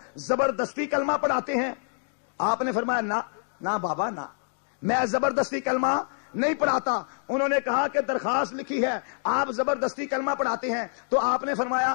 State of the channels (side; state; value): right; silent; digital silence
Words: زبردستی کلمہ پڑھاتے ہیں. آپ نے فرمایا نہ بابا نہ, میں زبردستی کلمہ نہیں پڑھاتا. انہوں نے کہا کہ درخواست لکھی ہے آپ زبردستی کلمہ پڑھاتے ہیں. تو آپ نے